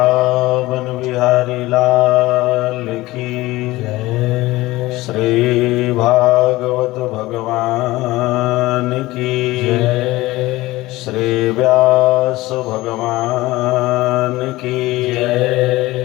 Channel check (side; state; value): right; quieter; 18.8 dB